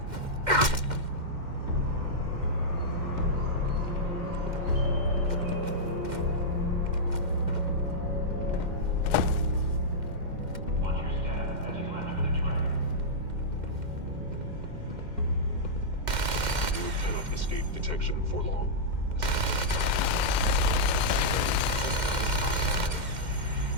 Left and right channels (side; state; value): left; late; 2.1 ms